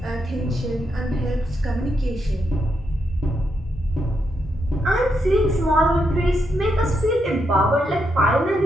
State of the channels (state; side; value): normal; both; correlation 0.81